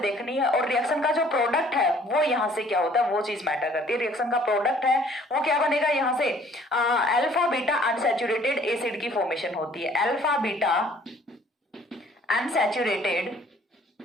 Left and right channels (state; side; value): normal; both; correlation 0.57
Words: देखनी है। और रिएक्शन का जो प्रोडक्ट है वो यहाँ से क्या होता है वो चीज मैटर करती है। रिएक्शन का प्रोडक्ट है वो क्या बनेगा, यहाँ से अल्फा बीटा अनसैचुरेटेड एसिड की फॉर्मेशन होती है। Alpha beta unsaturated